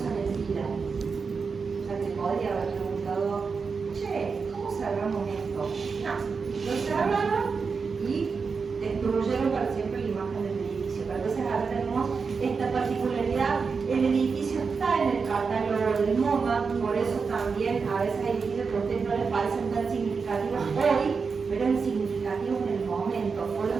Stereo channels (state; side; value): quieter; left; 5.2 dB